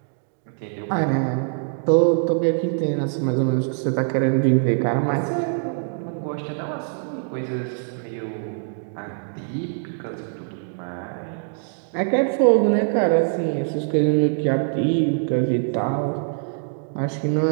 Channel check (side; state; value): left; silent; digital silence